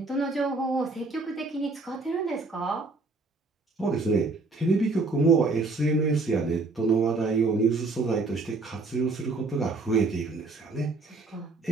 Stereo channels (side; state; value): left; quieter; 3.6 dB